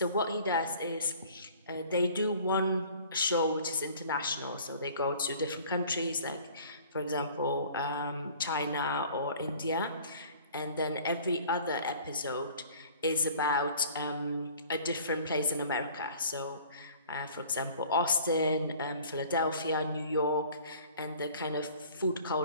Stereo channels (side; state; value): both; inverted; correlation -0.49